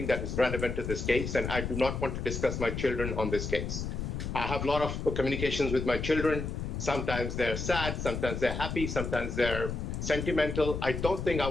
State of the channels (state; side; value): noise; left; rumble, 4 dB below the sound